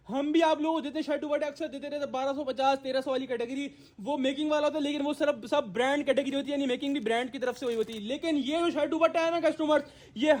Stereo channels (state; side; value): identical; both; correlation 1.00